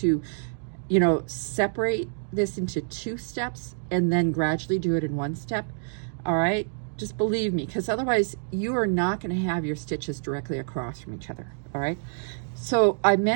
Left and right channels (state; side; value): silent; left; digital silence